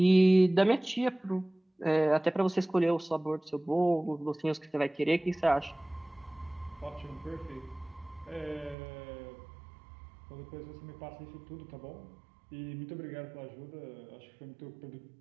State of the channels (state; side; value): drops out; left; at 8.8 s